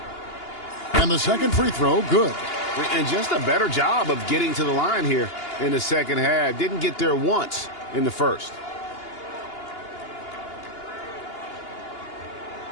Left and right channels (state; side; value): late; right; 2.8 ms